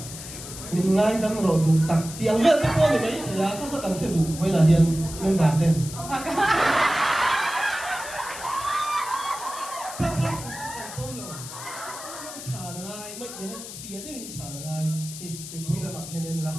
mình ngay đâm rồi tu tắc tiếng về cái con này mấy thì á các làm chuyện đủ với là hiền nên đạt tên phía đấy mình trả là ai thì mình vui là mặc lên em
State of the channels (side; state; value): left; noise; hiss, 11 dB below the sound